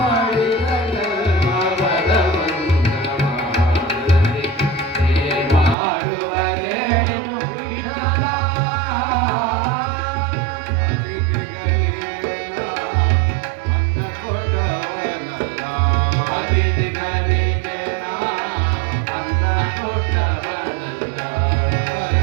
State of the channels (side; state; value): left; drops out; at 5.8 s